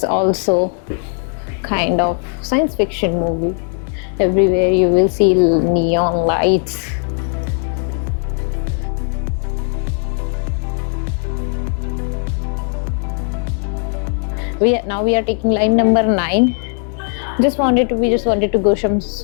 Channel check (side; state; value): right; silent; 58 dB below the other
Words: also kind of science fiction movie. Everywhere you will see neon lights. Now we are taking line number 9. We just wanted to go some